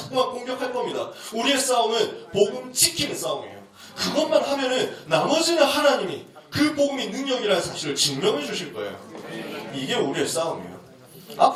공격할 겁니다. 우리의 싸움은 복음 지키는 싸움이에요. 그것만 하면은 나머지는 하나님이 그 복음이 능력이라는 사실을 증명해 주실 거예요. 이게 우리의 싸움이에요.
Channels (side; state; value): both; identical; correlation 1.00